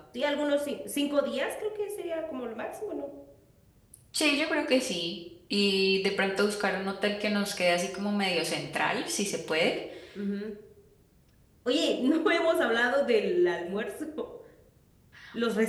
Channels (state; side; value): identical; both; correlation 1.00